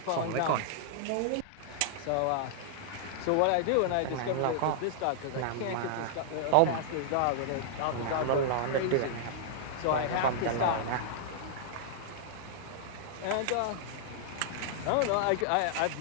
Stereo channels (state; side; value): different; both; correlation -0.01